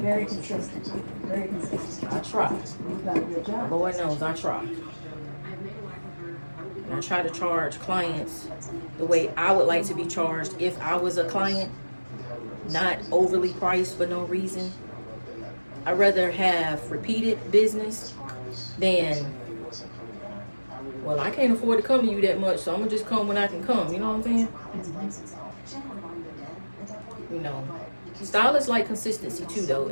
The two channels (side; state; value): both; inverted; correlation -1.00